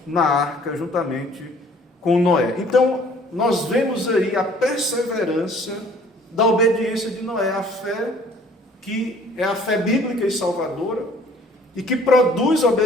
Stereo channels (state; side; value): normal; both; correlation 0.55